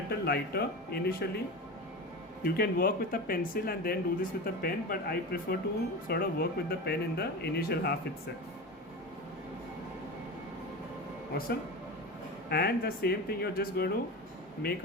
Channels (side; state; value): both; normal; correlation 0.26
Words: lighter initially. You can work with a pencil and then do this with a pen, but I prefer to sort of work with the pen in the initial half itself. Awesome. And the same thing, you're just going to make